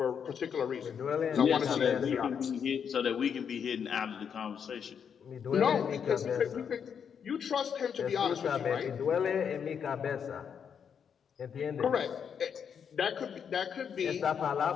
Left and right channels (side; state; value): right; quieter; 7.4 dB